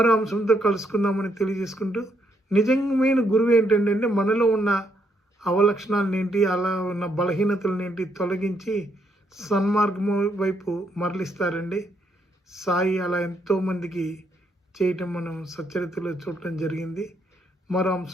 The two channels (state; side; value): normal; both; correlation 0.75